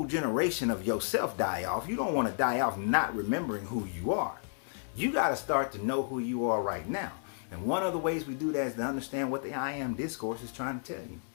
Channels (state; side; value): silent; right; 56 dB below the other